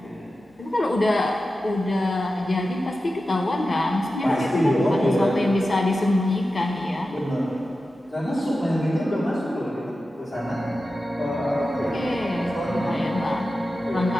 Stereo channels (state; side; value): normal; both; correlation 0.93